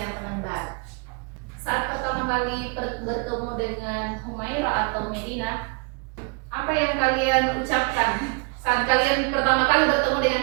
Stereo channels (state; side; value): quieter; left; 33.5 dB